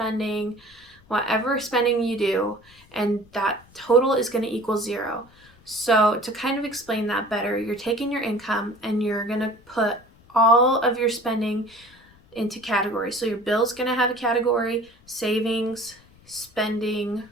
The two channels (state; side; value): noise; left; rumble, 28 dB below the sound